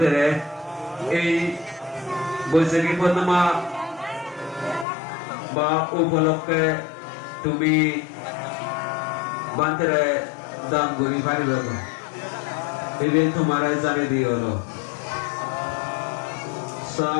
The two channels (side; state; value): right; drops out; at 4.9 s